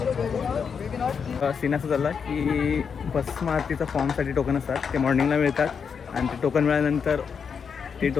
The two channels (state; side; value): quieter; right; 6.4 dB